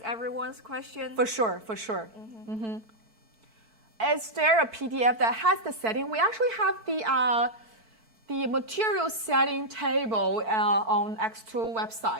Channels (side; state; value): left; late; 4.5 ms